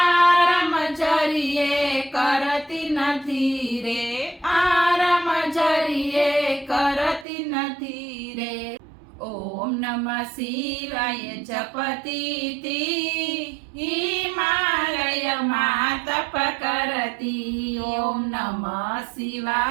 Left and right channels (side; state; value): left; drops out; at 7.2 s